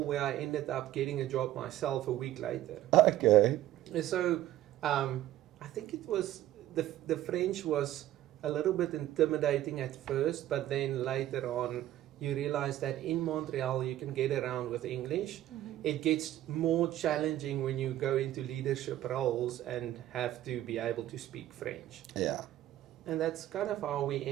where I ended up getting a job myself a week later. Okay. So I think it was, the French was a little bit intimidating at first, but then later on, you realize that in Montreal you can get around with English. It gets more challenging when you go into leadership roles and have to be able to speak French. Yeah. And that's kind of how we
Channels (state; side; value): quieter; left; 13.6 dB